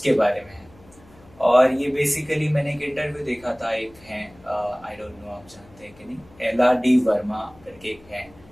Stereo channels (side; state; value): left; noise; hum, 26 dB below the sound